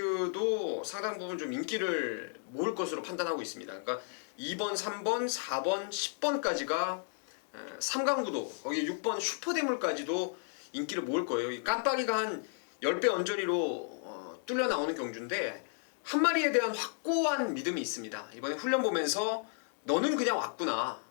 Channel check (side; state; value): right; silent; 55 dB below the other